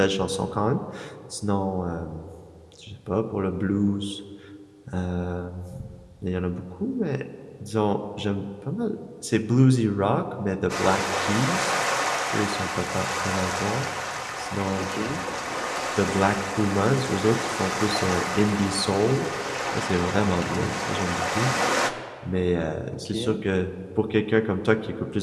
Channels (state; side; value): identical; both; correlation 1.00